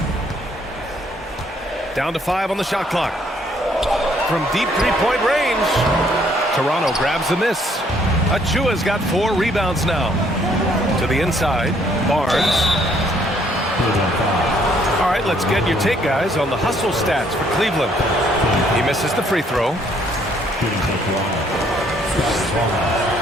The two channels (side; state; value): both; normal; correlation 0.66